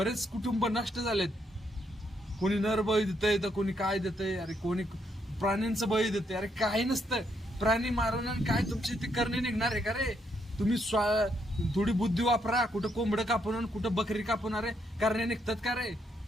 कुटुंब नष्ट झालेत. कोणी नर बळी देतंय तर कोणी काय देतंय, अरे कोणी प्राण्यांचं बळी देते. अरे काही नसतं, प्राणी मारून आणि काय तुमची ती करणी निघणार आहे का रे? तुम्ही थोडी बुद्धी वापरा, कुठं कोंबडं कापून कुठं बकरी कापून, अरे करणे निघतात का रे?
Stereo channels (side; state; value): both; normal; correlation 0.76